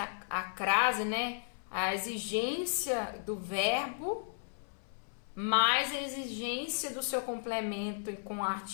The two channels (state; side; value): silent; right; 55 dB below the other